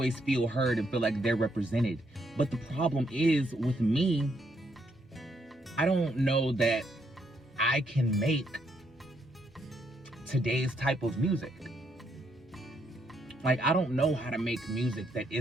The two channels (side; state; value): both; normal; correlation 0.75